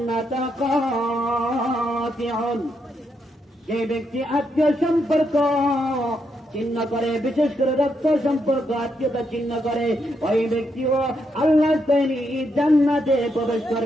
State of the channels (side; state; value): both; normal; correlation 0.80